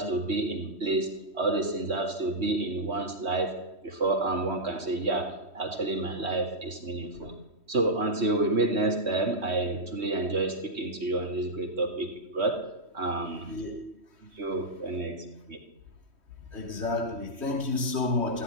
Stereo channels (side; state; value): left; late; 3.1 ms